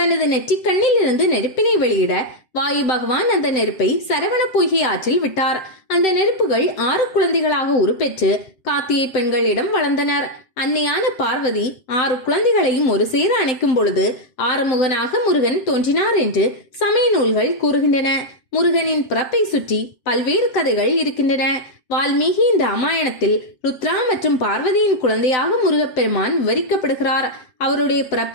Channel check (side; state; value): right; late; 7.6 ms